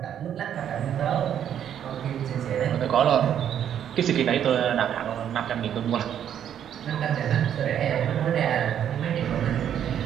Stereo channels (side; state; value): left; quieter; 9.6 dB